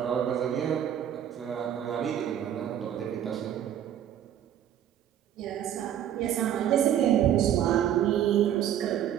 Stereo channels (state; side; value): quieter; left; 10.4 dB